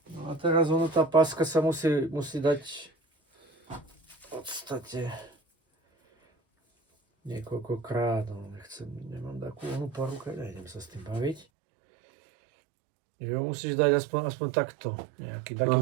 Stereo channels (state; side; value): drops out; left; at 11.5 s